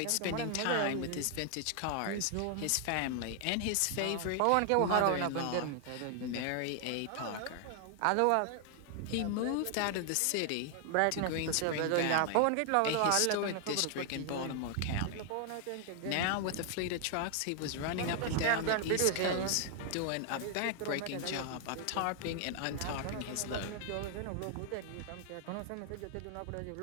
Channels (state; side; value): different; both; correlation 0.00